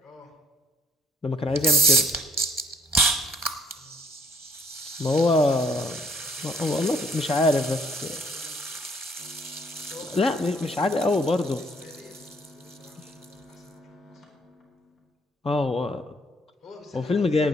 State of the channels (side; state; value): both; normal; correlation 0.63